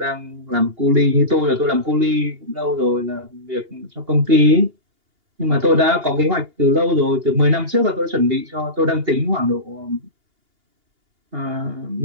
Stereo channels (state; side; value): late; left; 2.8 ms